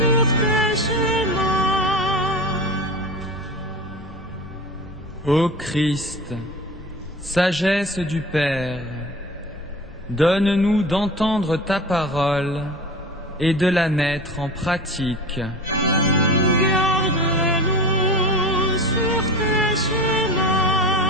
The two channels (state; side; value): normal; both; correlation 0.33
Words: tes chemins. Ô Christ, sagesse du Père, donne-nous d'entendre ta parole et de la mettre en pratique. Garde-nous sur tes